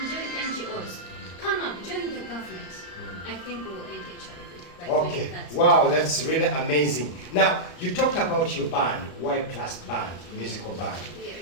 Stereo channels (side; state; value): right; late; 34 ms